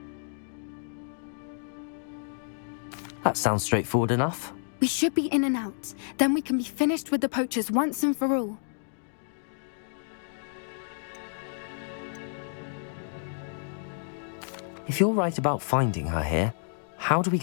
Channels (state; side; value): silent; right; digital silence